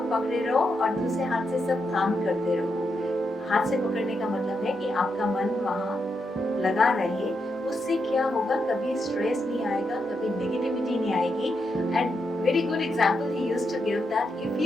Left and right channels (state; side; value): normal; both; correlation 0.83